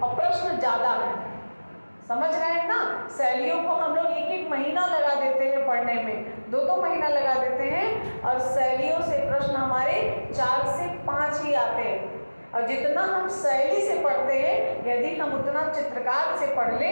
प्रश्न ज़्यादा है। समझ रहे हैं ना? शैलियों को हम लोग 1-1 महीना लगा देते हैं पढ़ने में, 2-2 महीना लगा देते हैं, और शैलियों से प्रश्न हमारे 4 से 5 ही आते हैं। और जितना हम शैली से पढ़ते हैं, यदि हम उतना चित्रकार से पढ़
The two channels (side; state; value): both; inverted; correlation -1.00